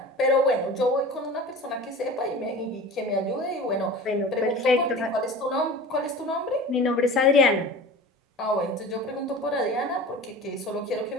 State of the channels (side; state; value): both; normal; correlation 0.37